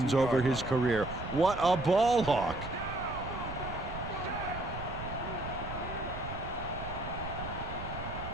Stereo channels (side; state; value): right; noise; rumble, 9 dB below the sound